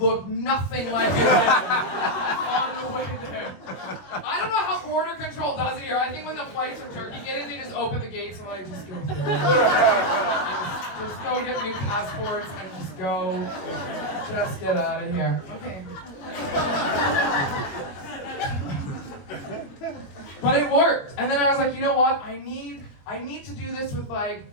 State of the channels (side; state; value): right; late; 21 ms